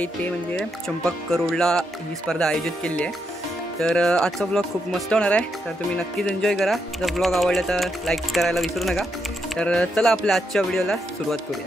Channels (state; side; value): normal; both; correlation 0.81